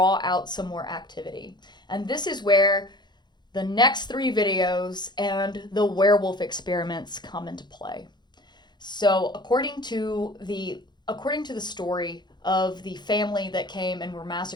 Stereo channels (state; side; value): late; right; 0.21 ms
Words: out some more activity. And this is where the next 3 videos and the werewolf experiments come into play. So according to the story of the family that came and were